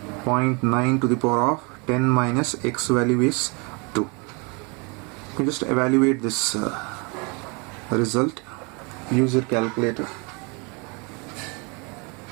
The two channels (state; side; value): quieter; left; 31.2 dB